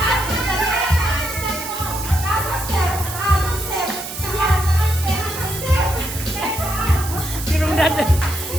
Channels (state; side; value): noise; right; hiss, 9 dB below the sound